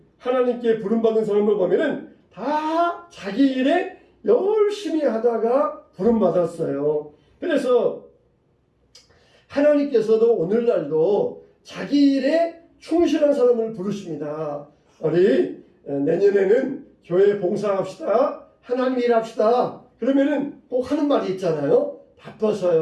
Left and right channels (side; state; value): both; identical; correlation 1.00